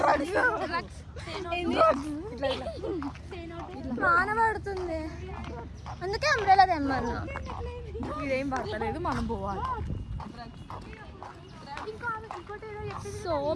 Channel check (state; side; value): identical; both; correlation 1.00